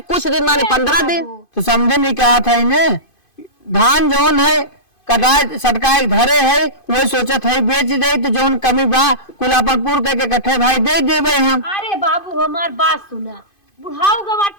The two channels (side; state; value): right; late; 2.5 ms